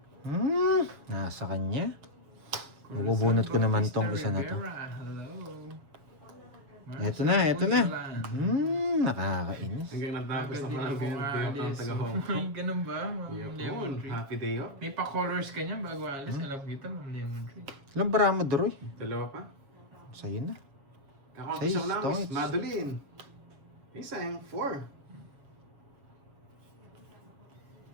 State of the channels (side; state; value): left; late; 7.3 ms